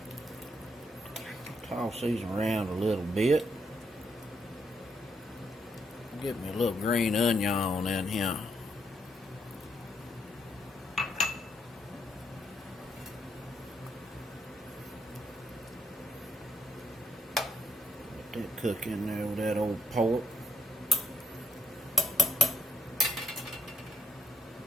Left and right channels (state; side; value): normal; both; correlation 0.74